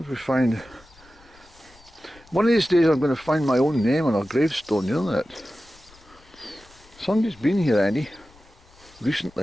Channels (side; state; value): left; noise; rumble, 26 dB below the sound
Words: we find... One of these days I'm going to find my own name on a gravestone, you know that? Somebody's been here, Andy,